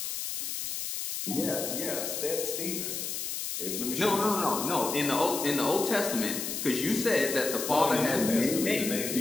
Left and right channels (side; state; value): left; noise; hiss, 4 dB below the sound